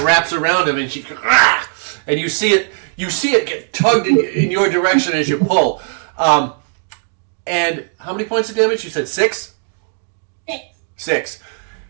wraps around him, and and you see it get tugged in your direction as you pull. And how many points of damage? You said 6? 6. 6.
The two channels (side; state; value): left; silent; digital silence